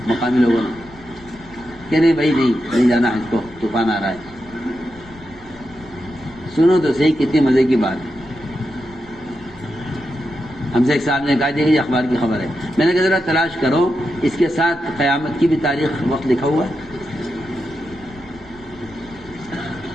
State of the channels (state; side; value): noise; left; rumble, 23 dB below the sound